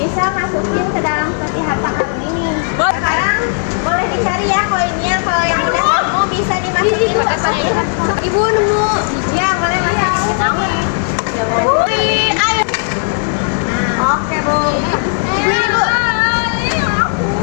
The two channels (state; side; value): silent; right; digital silence